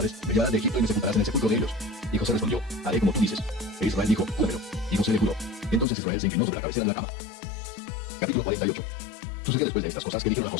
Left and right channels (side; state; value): right; drops out; at 5.9 s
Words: me llevarás de Egipto y me sepultarás en el sepulcro de ellos. Y José respondió: haré como tú dices. E Israel dijo: júramelo. Y José le juró. Entonces Israel se inclinó sobre la cabecera de la cama. Capítulo 48. Sucedió después de estas cosas que dijeron a